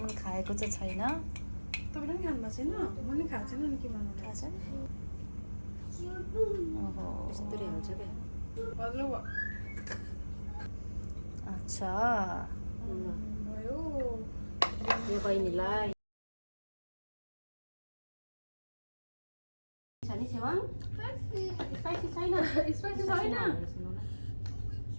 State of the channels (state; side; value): inverted; both; correlation -1.00